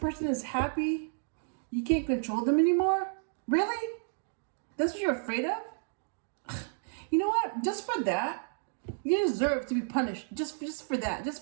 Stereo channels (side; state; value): left; silent; digital silence